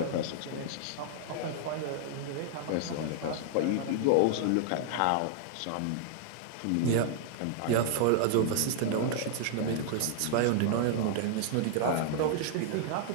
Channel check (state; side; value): different; both; correlation -0.01